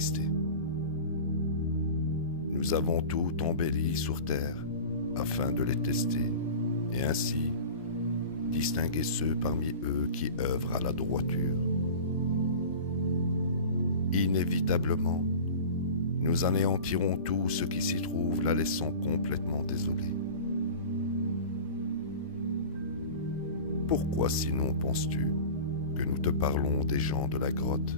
Nous avons tout embelli sur terre afin de les tester et ainsi distinguer ceux parmi eux qui œuvrent à la droiture. Inévitablement, nous anéantirons tout ce qui s'y trouve, la laissant complètement désolée. Pourquoi sinon penses-tu que nous te parlons des gens de la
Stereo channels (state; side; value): inverted; both; correlation -0.35